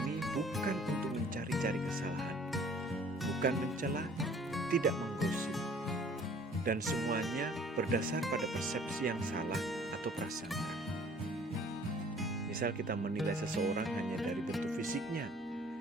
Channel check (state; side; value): normal; both; correlation 0.53